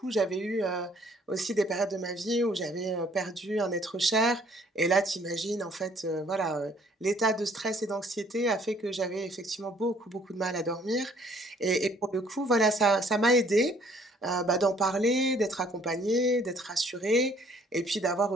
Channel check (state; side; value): normal; both; correlation 0.60